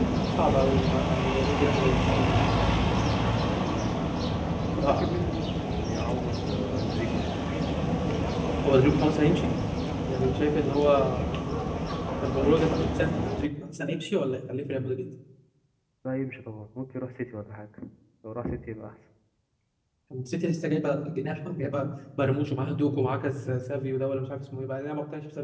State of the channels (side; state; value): both; identical; correlation 1.00